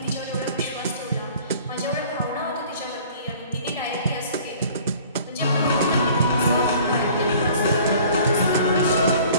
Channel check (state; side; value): inverted; both; correlation -0.50